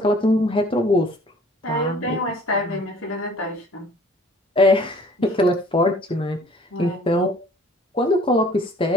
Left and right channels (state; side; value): normal; both; correlation 0.53